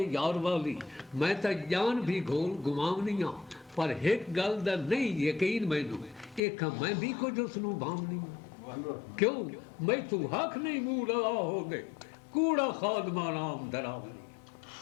यार वाली, मैं तो जान भी घोल गुमावनियां, पर एक गल दा नहीं यकीन मैनू, एक मैं भी कुछ उसनू भावनी, क्यों मैं तू हक नहीं मूह लगा हो दे, कूड़ा खादमा नाम दरावनी,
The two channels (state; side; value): drops out; right; at 6.4 s